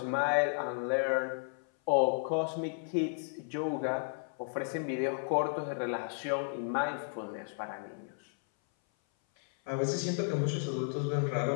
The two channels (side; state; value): right; silent; 55 dB below the other